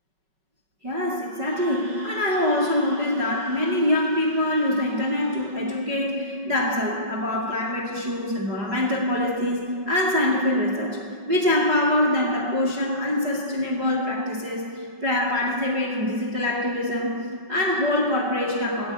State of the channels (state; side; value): late; left; 5.3 ms